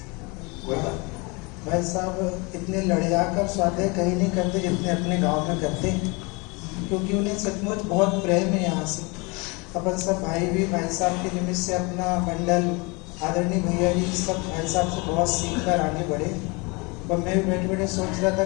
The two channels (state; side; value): quieter; right; 28.3 dB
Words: कोई बात। भाई साहब इतने लड़िया कर स्वाध्याय कहीं नहीं करते जितने अपने गांव में करते हैं, क्योंकि उन्हें सचमुच बहुत प्रेम है यहाँ से। अपन सब भाई भी भाई साहब के निमित्त से अपना मंडल, आदरणीय भैया जी सब भाई साहब से बहुत सीख कर आगे बढ़े। और मैं भी बैठे बैठे सोच रहा